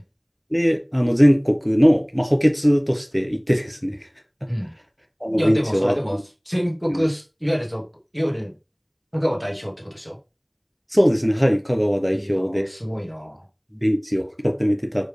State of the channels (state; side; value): identical; both; correlation 1.00